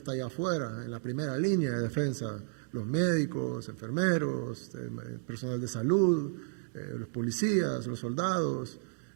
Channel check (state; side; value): silent; left; digital silence